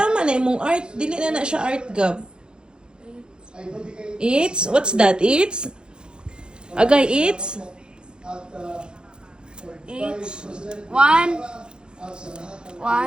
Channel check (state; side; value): late; left; 0.049 ms